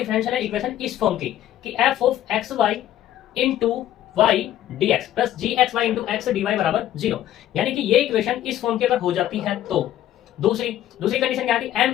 इक्वेशन इस फॉर्म की कि f of x y into y d x plus g x y into x d Y बराबर 0, यानी कि ये इक्वेशन इस फॉर्म की अगर हो जाती है तो दूसरी कंडीशन क्या थी,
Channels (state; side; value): quieter; right; 12.4 dB